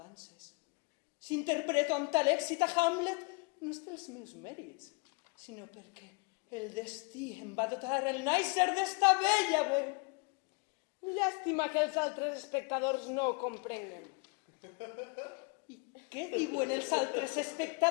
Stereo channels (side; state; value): right; quieter; 31.8 dB